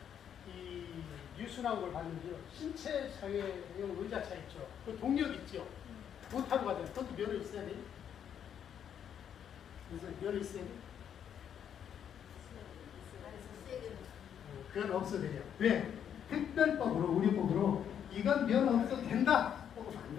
이 뉴스 나온 걸 봤는데요. 신체 장애용 의자차 있죠. 그 동력 있죠. 못 타고 가잖아요. 그것도 면허 있어야 돼요. 그래서 면허 있어야 돼요. 그건 없어도 돼요. 왜? 특별법으로, 우리법으로 이건 면허 없어도 된다 하고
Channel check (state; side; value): quieter; right; 8.9 dB